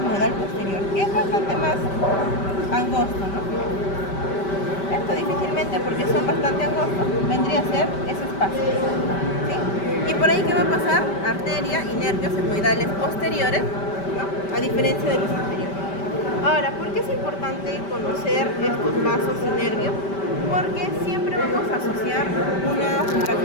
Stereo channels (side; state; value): right; late; 5.1 ms